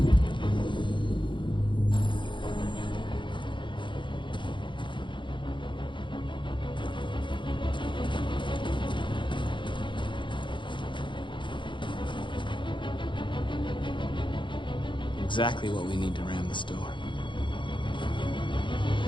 Exactly what we need to ram the store.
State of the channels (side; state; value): right; late; 0.23 ms